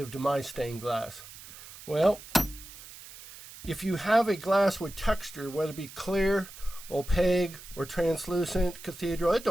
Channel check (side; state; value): right; noise; hiss, 16 dB below the sound